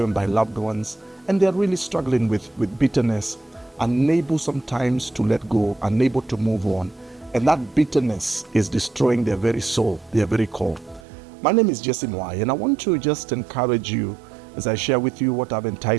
by loved ones, and they're really struggling with bitterness, unable sometimes to let go, unable to move on. And that bitterness is destroying their very soul, their very core. My name is Mwai, and I want to just encourage you as I share with you what I've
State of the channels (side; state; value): left; drops out; at 11.0 s